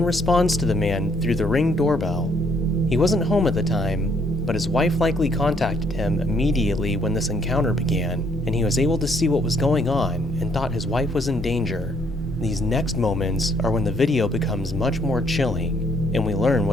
responds to the man through the Ring doorbell. He wasn't home at the time, but his wife likely contacted him immediately when this encounter began, and he was able to see what was going on and thought his wife was in danger. These next moments are when the video becomes much more chilling, and we learn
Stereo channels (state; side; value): normal; both; correlation 0.67